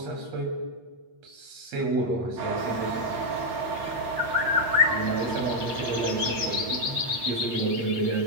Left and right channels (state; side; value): late; left; 8.3 ms